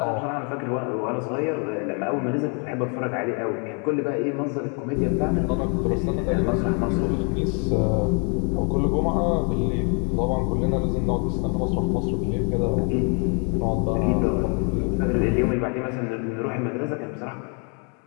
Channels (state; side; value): quieter; right; 37.5 dB